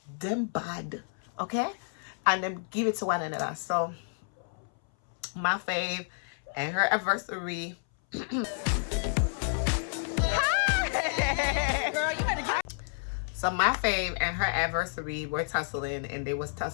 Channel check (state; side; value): silent; right; 58 dB below the other